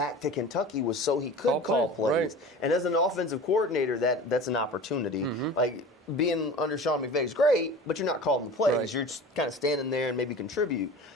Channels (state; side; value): normal; both; correlation 0.37